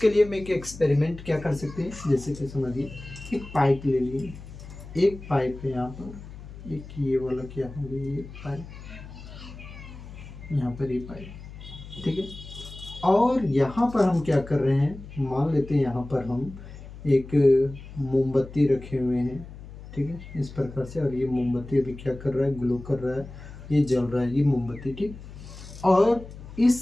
लिए मैं एक एक्सपेरिमेंट क्या कर सकते हैं? जैसे कि समझिए, एक पाइप ले लिए, एक पाइप है यहाँ पर, एक ये वाला क्या हो गया, ये पाइप, यहाँ पर ये पाइप, ठीक है। और यहाँ पर हम क्या कर रहे हैं? मान लेते हैं यहाँ पर हम एक मोमबत्ती रखे हुए हैं, ठीक है, इस प्रकार से। और ये मोमबत्ती अभी क्या कर रहा है? ग्लो कर रहा है, ये जल रहा है, ये मोमबत्ती, ठीक। और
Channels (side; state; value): left; noise; hum, 14 dB below the sound